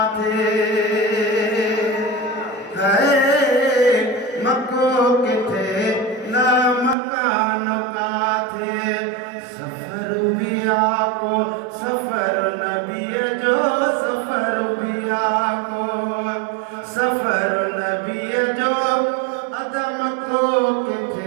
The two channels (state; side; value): drops out; left; at 7.0 s